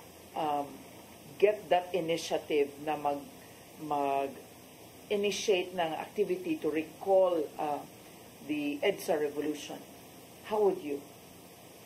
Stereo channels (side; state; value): both; identical; correlation 1.00